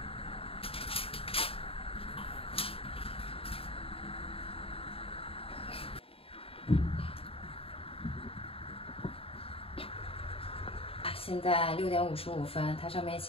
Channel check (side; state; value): right; late; 0.27 ms